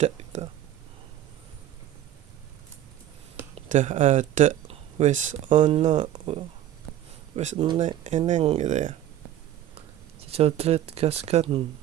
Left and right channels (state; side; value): quieter; left; 12.1 dB